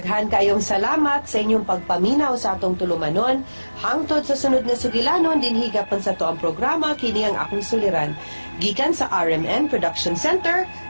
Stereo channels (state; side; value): inverted; both; correlation -1.00